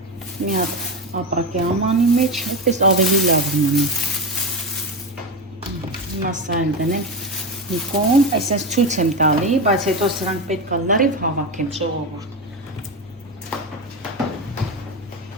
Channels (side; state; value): both; normal; correlation 0.18